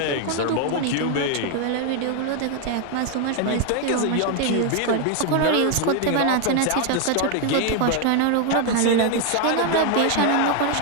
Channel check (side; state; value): both; different; correlation 0.01